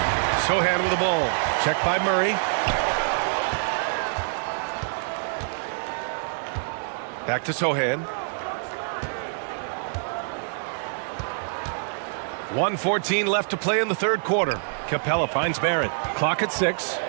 Sohan with the ball. Checked by Murray. Back to Sohan. 1:14 left to play in the 3rd quarter. Capella finds Barrett. Clock at 6.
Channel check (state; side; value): silent; left; digital silence